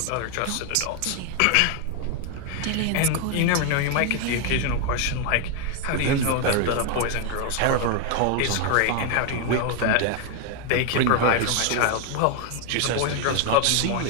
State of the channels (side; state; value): both; different; correlation 0.01